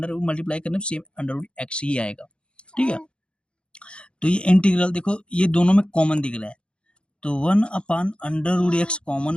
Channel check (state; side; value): late; right; 0.056 ms